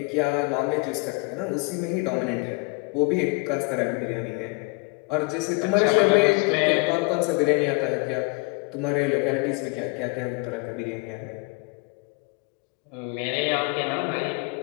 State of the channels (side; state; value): right; quieter; 28.1 dB